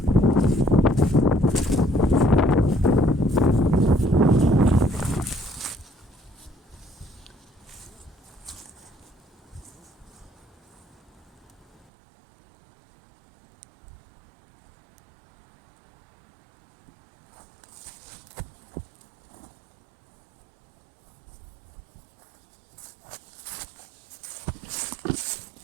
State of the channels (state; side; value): drops out; left; at 11.9 s